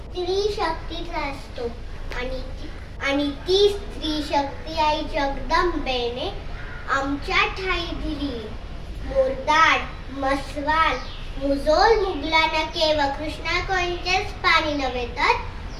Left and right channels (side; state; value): both; identical; correlation 1.00